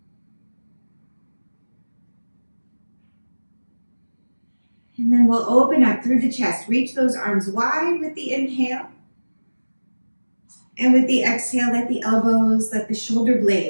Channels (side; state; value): both; inverted; correlation -1.00